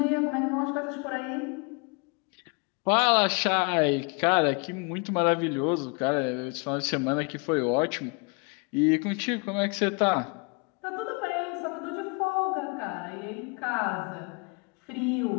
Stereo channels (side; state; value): right; quieter; 33.5 dB